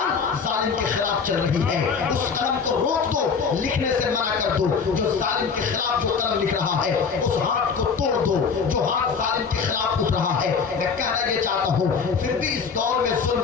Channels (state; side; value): quieter; right; 5.7 dB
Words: ظالم کے خلاف چل رہی ہے, اس قلم کو روک دو, لکھنے سے منع کر دو جو ظالم کے خلاف جو قلم لکھ رہا ہے, اس ہاتھ کو توڑ دو جو ہاتھ ظالم کے خلاف اٹھ رہا ہے. میں کہنا یہ چاہتا ہوں پھر بھی اس دور میں